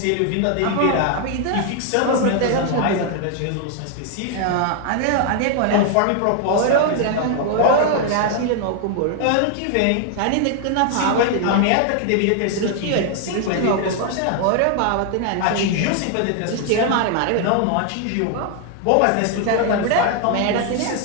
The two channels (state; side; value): different; both; correlation 0.00